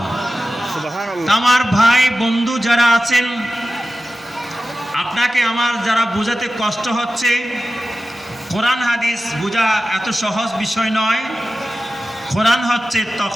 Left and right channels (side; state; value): both; normal; correlation 0.94